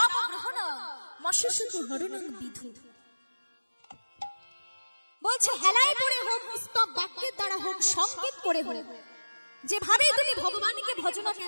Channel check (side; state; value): both; inverted; correlation -1.00